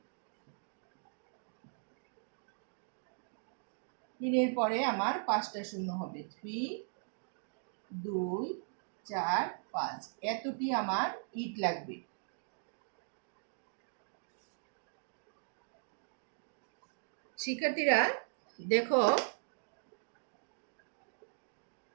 3 এর পরে আমার 5টা শূন্য হবে। 3 2 4 5, এতটি আমার ইট লাগবে। শিক্ষার্থীরা দেখো,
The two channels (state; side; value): silent; left; digital silence